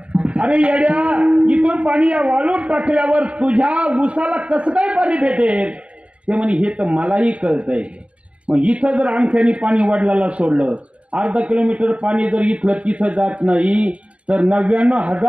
अरे येड्या, इथून पाणी या वाळूत टाकल्यावर तुझ्या ऊसाला कसं काय पाणी भेटेल? ते म्हणे हे तर मलाही कळतंय. मग इथं जर अंगठ्याने पाणी वडिलाला सोडलं, अर्धा किलोमीटर पाणी जर इथलं तिथं जात नाही, तर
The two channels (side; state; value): left; late; 0.062 ms